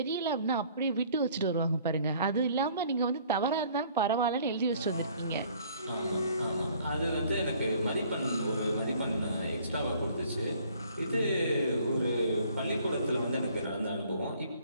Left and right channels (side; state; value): both; inverted; correlation -0.57